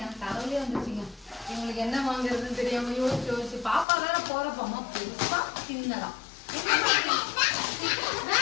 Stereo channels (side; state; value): right; drops out; at 3.9 s